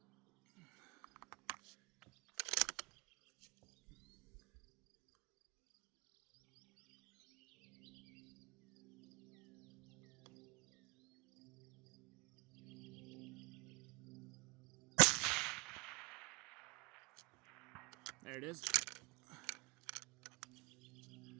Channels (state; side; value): quieter; left; 28.5 dB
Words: There it is.